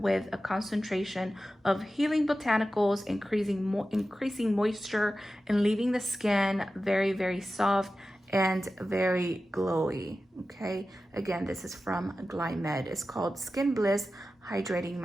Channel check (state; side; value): normal; both; correlation 0.93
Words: a concentration of healing botanicals, increasing moisture and leaving the skin very, very soft and very glowy. Okay, again, this is from Glam. It's called Skin Bliss Hydrating